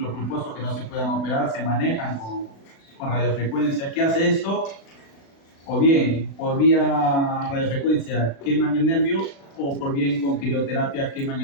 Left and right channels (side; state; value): right; late; 36 ms